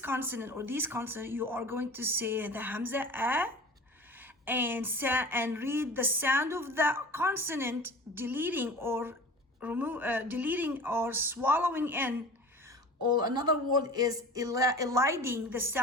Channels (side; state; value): both; normal; correlation 0.38